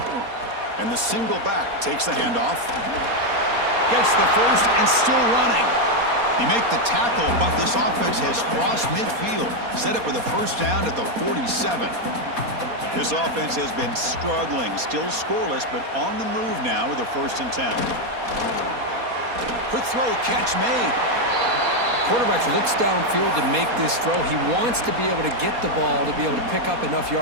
And the single back takes the handoff. Gets the 1st and still running. He make the tackle, but this offense has crossed midfield. Set up with a 1st down at the 47. This offense has been struggling, still scoreless, but on the move now with a 1st and 10. Quick throw, catch made. Quarterback looks downfield to make this throw. He wants to be able to get the ball to be able to pick up enough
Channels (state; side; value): late; left; 4.2 ms